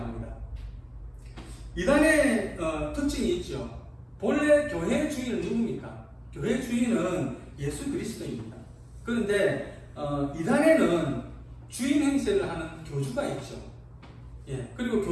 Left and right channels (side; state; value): both; identical; correlation 1.00